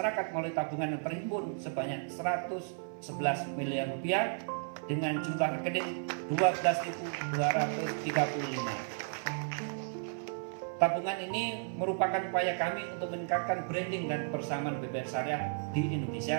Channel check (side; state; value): left; silent; 55 dB below the other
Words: melalui tabungan yang terhimpun sebanyak 111 miliar rupiah dengan jumlah rekening 12.235. Tabungan ini merupakan upaya kami untuk meningkatkan branding dan kebersamaan BPR Syariah di